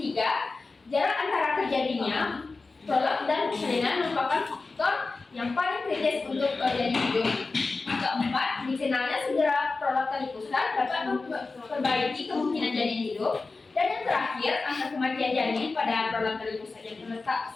jarak antara terjadinya prolap dan persalinan merupakan faktor yang paling kritis untuk janin hidup. Keempat, dikenalnya segera prolap tali pusat dapat memperbaiki kemungkinan janin hidup. Dan yang terakhir, angka kematian janin pada prolap tali pusat yang terletak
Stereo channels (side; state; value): right; quieter; 3.8 dB